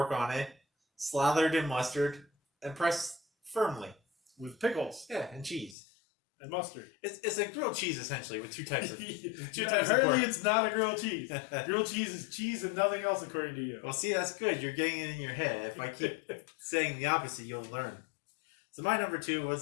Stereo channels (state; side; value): drops out; right; at 5.8 s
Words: on it, slathered in mustard, and pressed firmly. With pickles. Yeah, and cheese. And mustard. It's a grilled cheese, essentially, with 2 types of Apparently it's not a grilled cheese. Grilled cheese is cheese and nothing else, according to you. Well, see, that's good. You're getting it in your head. If I keep saying the opposite, you'll learn. So my number 2